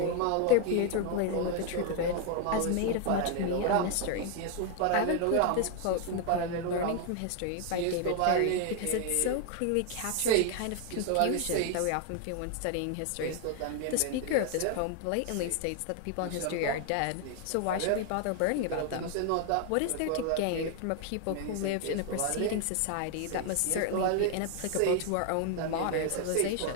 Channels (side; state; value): both; different; correlation 0.00